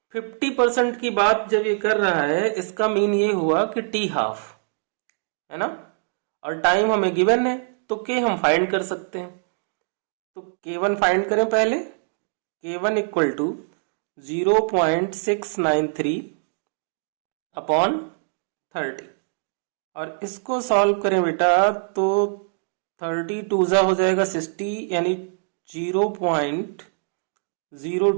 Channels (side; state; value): left; silent; digital silence